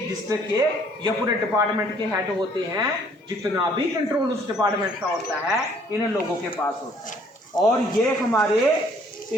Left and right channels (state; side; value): normal; both; correlation 0.61